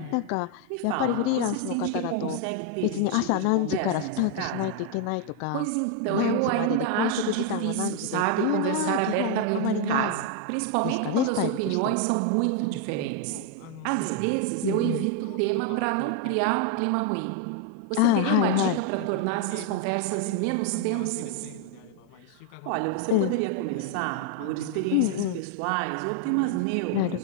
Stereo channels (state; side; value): different; both; correlation 0.01